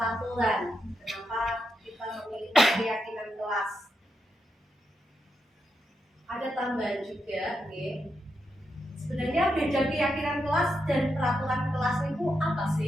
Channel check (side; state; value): both; normal; correlation 0.85